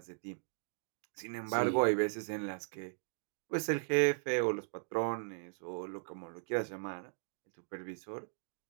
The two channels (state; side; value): silent; left; digital silence